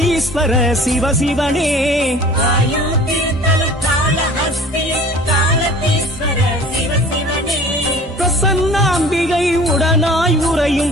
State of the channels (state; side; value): normal; both; correlation 0.46